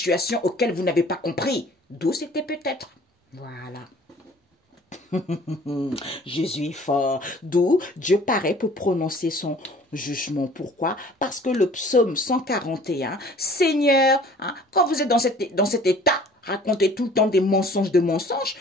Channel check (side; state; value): both; normal; correlation 0.51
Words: auquel vous n'avez pas compris. D'où c'était peut-être. Voilà. Jésus est fort. D'où Dieu paraît pour prononcer son jugement. Pourquoi? Parce que le psaume 141, Seigneur, hein, quand vous êtes dans cet état, racontez tout le temps des mensonges de mensonges,